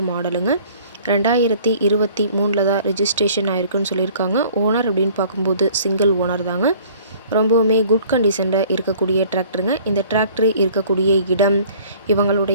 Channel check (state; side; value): inverted; both; correlation -0.53